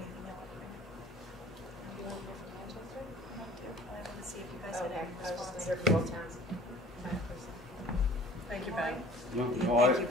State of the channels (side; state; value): both; normal; correlation 0.49